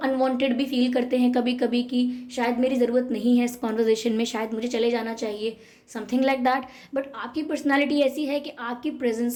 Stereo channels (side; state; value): both; identical; correlation 1.00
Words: भी फील करते हैं कभी कभी कि शायद मेरी ज़रूरत नहीं है इस कॉन्वर्जेशन में, शायद मुझे चले जाना चाहिए, समथिंग लाइक दैट। बट आपकी पर्सनालिटी ऐसी है कि आपकी